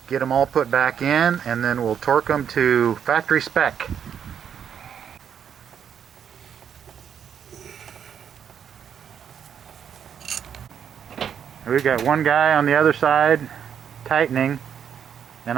get them all put back in, and then we'll torque them to factory spec. We've got one guy on the other side tightening, and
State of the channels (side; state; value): left; quieter; 8.3 dB